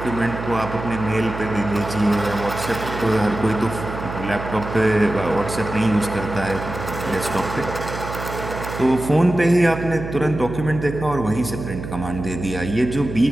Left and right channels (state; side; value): noise; right; hum, 8 dB below the sound